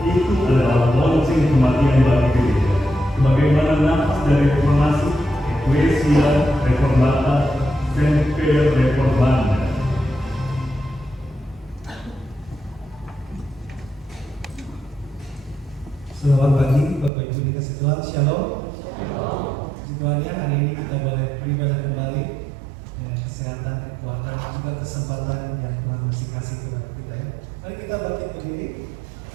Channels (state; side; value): drops out; left; at 17.1 s